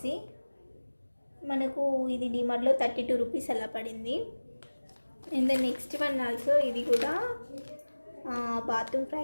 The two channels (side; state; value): both; inverted; correlation -1.00